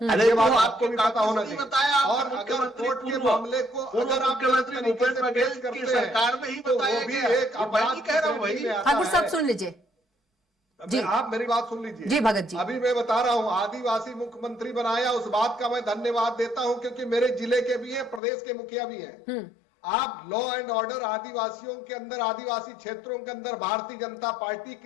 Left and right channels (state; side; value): drops out; right; at 18.2 s